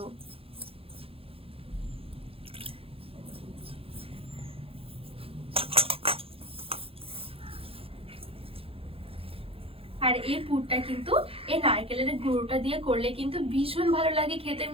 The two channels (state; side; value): late; left; 0.27 ms